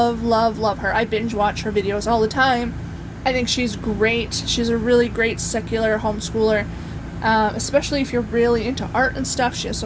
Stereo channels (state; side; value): identical; both; correlation 1.00